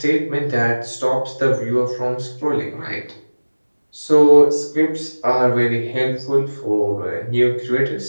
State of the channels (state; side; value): inverted; both; correlation -1.00